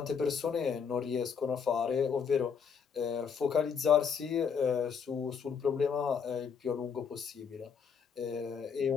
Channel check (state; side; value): quieter; right; 6.6 dB